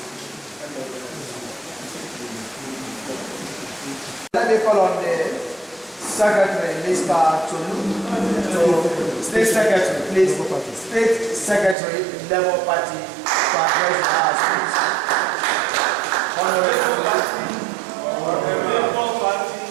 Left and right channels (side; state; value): left; drops out; at 11.8 s